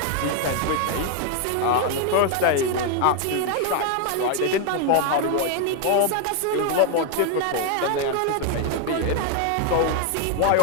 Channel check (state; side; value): different; both; correlation 0.01